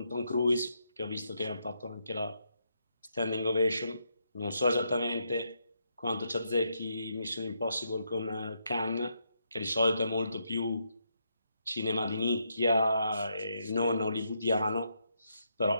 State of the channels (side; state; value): both; inverted; correlation -0.79